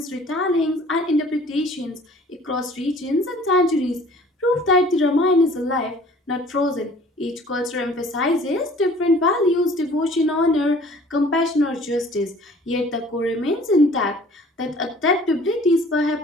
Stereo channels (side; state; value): both; normal; correlation 0.51